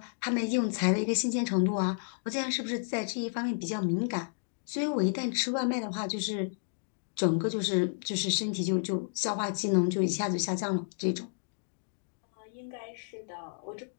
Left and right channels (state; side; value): silent; right; digital silence